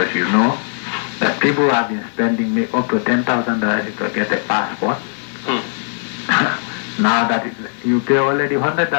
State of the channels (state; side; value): silent; right; 57 dB below the other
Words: you know that people have been spending up to $10,000 to get a passport. Now that you pay already